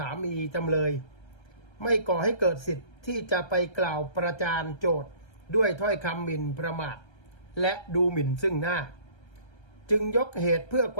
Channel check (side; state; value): right; late; 1.3 ms